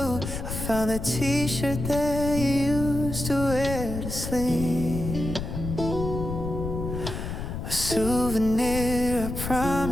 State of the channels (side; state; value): left; noise; rumble, 5 dB below the sound